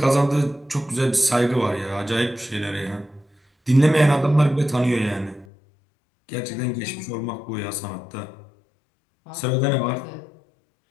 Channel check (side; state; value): right; drops out; at 5.5 s